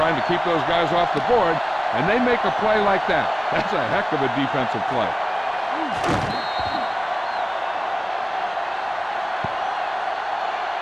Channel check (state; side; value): identical; both; correlation 1.00